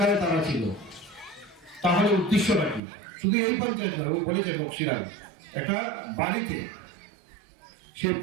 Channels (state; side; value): drops out; left; at 2.8 s